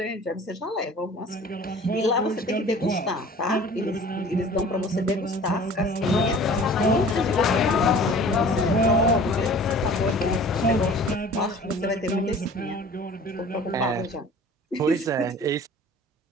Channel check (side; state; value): both; normal; correlation 0.45